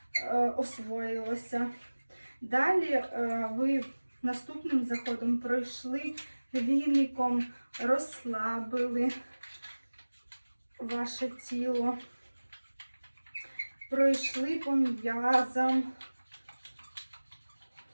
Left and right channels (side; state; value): both; inverted; correlation -1.00